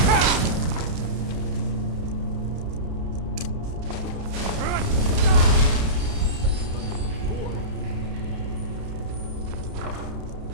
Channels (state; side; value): late; left; 31 ms